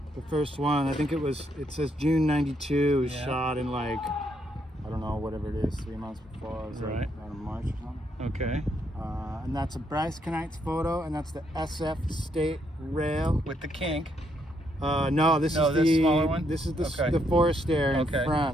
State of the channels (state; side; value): normal; both; correlation 0.75